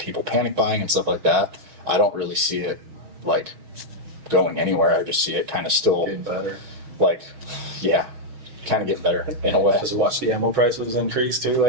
panic buying and stuff like that, I don't really see it like going anywhere. I just see it kind of still Getting better. like, kind of getting better in a way. Just watch the ammo prices increase too,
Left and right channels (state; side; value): late; left; 6.3 ms